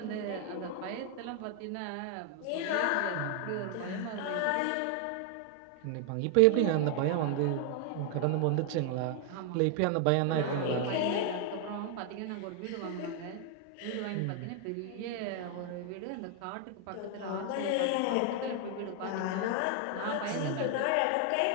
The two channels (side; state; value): both; different; correlation 0.00